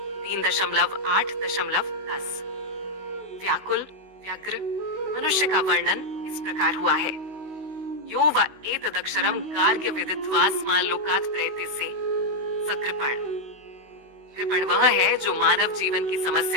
3.8.10 व्याकुल व्यग्र मनुष्य का वर्णन इस प्रकार हुआ है। यो व एतदक्षरम गार्ग्य विदित्वास्मान् लोकात् प्रयतिसे स कृपण। कृपण वह है जो मानव जीवन की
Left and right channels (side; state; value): left; late; 16 ms